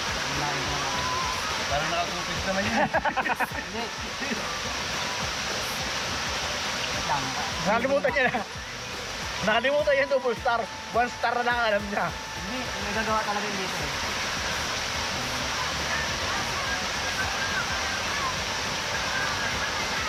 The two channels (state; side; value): identical; both; correlation 1.00